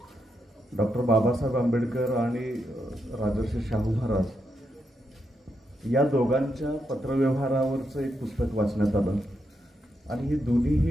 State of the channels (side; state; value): both; normal; correlation 0.82